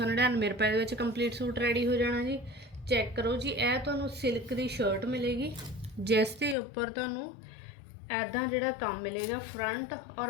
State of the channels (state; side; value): drops out; right; at 6.6 s